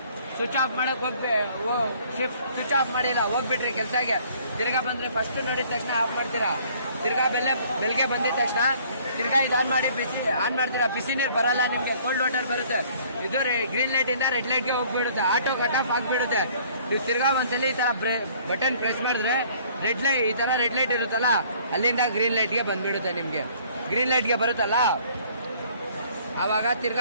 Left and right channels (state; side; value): inverted; both; correlation -0.57